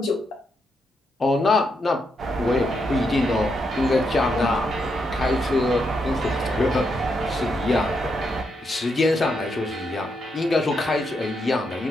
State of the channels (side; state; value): both; normal; correlation 0.81